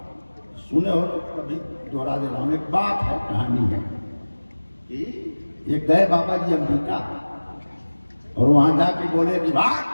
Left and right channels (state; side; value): inverted; both; correlation -1.00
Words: सुने हो तो कभी दोहरा दे रहा हूं। एक बात है, कहानी है कि एक गए बाबा जी अमेरिका और वहां जाके बोले कि बात